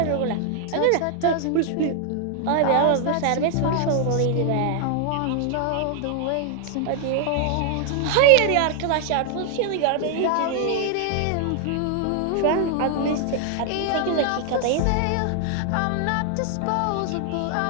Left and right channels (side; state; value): both; different; correlation 0.00